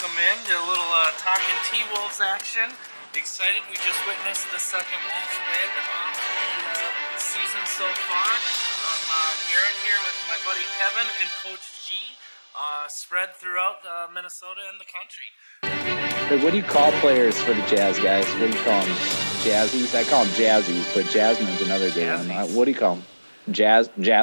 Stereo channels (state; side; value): inverted; both; correlation -1.00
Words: in to a little Talkin T-Wolves action. Excited, we just witnessed the second Wolves win of the season so far. I'm Garett here with my buddy Kevin and Coach G, spread throughout Minnesota and the country. But what do you call players for the Jazz, guys? What do you call them? Jazzies? I call them Jazzies, but Jasmine's another good one. What do you call them?